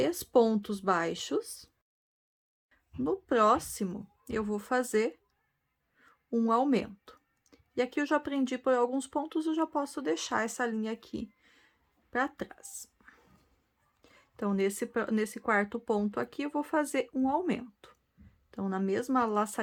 pontos baixos. No próximo, eu vou fazer um aumento. E aqui eu já aprendi por alguns pontos, eu já posso deixar essa linha aqui para trás. Então, nesse quarto ponto aqui, eu vou fazer um aumento. Então, na mesma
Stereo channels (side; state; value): both; identical; correlation 1.00